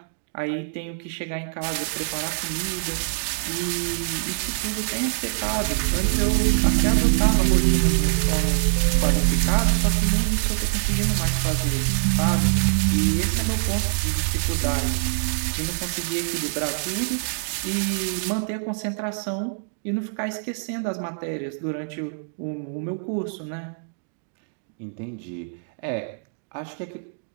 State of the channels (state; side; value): silent; left; digital silence